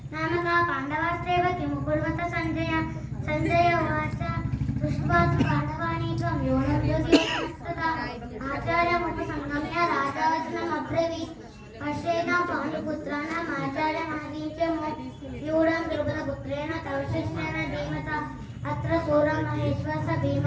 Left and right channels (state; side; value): identical; both; correlation 1.00